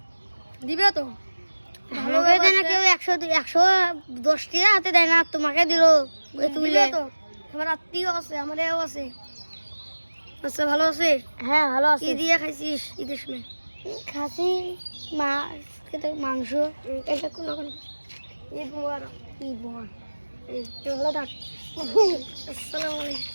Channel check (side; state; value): both; inverted; correlation -1.00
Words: দিবে তো ভালো দেয় না কেউ। 110 টাকা হাতে দেয় না, তোমাকে দিল তুলে তো। আমার আত্মীয় আছে, আমার এও আছে। আচ্ছা ভালো আছে? হ্যাঁ ভালো আছে। কি দিয়ে খাইছিস ঈদের সময়? খাসি, মাছ, মাংস। এটা কোনো ঈদ মোবারক। ঈদ মোবারক। ভালো থাক।